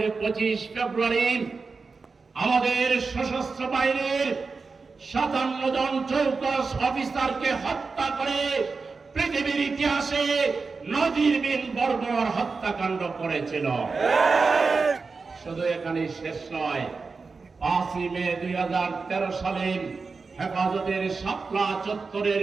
25 ফেব্রুয়ারি আমাদের সশস্ত্র বাহিনীর 57 জন চৌকস অফিসারকে হত্যা করে পৃথিবীর ইতিহাসে নজিরবিহীন বর্বর হত্যাকাণ্ড করেছিল। শুধু এখানেই শেষ নয়, 5 মে 2013 সালে হেফাজতের শাপলা চত্বরের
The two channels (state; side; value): quieter; left; 4.5 dB